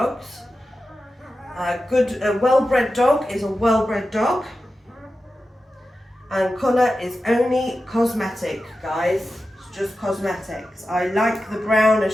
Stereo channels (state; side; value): normal; both; correlation 0.92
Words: A well-bred dog is a well-bred dog, and colour is only cosmetic, guys. It's just cosmetics. I like the brown,